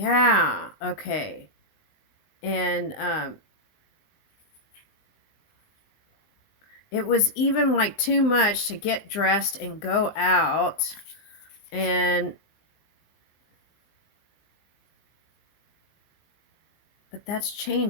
okay. And it was even like too much to get dressed and go out. And but that's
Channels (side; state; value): right; late; 19 ms